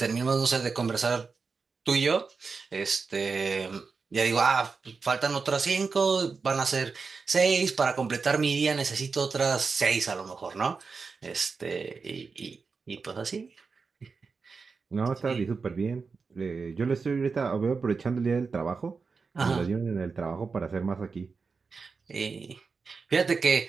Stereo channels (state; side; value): quieter; left; 4.8 dB